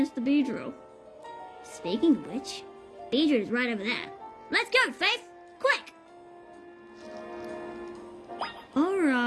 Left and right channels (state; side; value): identical; both; correlation 1.00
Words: the Beedrill. Speaking of which, Beedrill is right over there. Let's go, Faith! Quick!